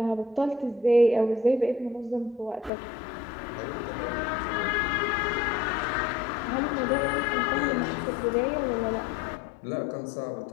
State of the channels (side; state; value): right; drops out; at 2.7 s